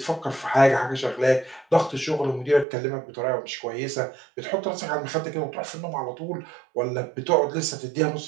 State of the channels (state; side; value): drops out; left; at 2.7 s